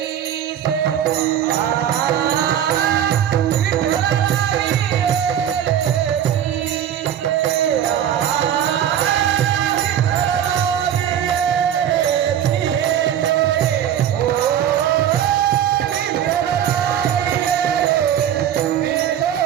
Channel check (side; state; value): left; quieter; 10.1 dB